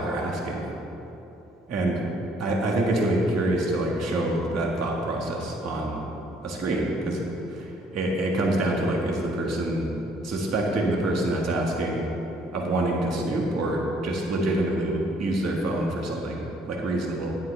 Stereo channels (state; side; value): normal; both; correlation 0.63